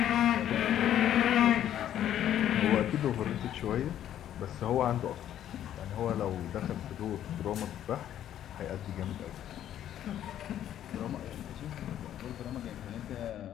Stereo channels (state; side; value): quieter; right; 11.1 dB